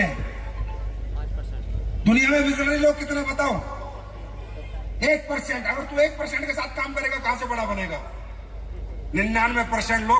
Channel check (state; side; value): identical; both; correlation 1.00